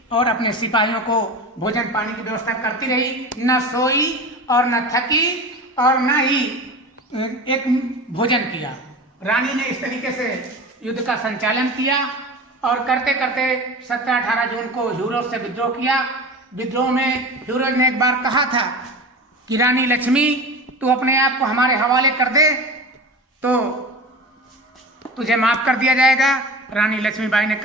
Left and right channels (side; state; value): both; normal; correlation 0.32